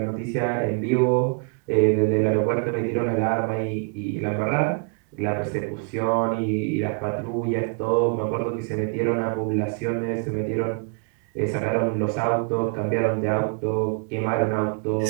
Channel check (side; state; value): left; quieter; 39.0 dB